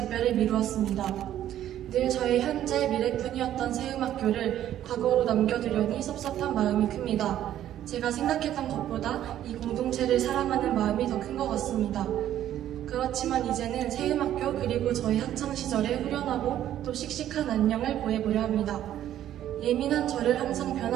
미루었습니다. 늘 저의 현재 미래뿐이었던 세음학교를 과거로 남겨두려니 섭섭한 마음이 큽니다. 제가 생각했던 것보다 이 공동체를 사랑하는 마음이 더 큰 것 같습니다. 그렇지만 이제는 세음학교 그리고 저희 학창시절의 후련하고 또 씩씩한 안녕을 보내보려 합니다. 예민한 저를 항상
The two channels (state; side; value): quieter; left; 11.8 dB